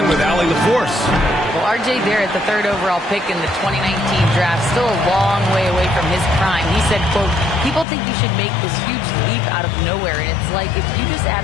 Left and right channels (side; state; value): right; drops out; at 7.9 s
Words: with Allie LaForce. Well, R.J. Barrett, the 3rd overall pick in the 2019 draft, still a long way away from his prime. He said, quote, people think you should make this huge leap out of nowhere. And it's like if you just add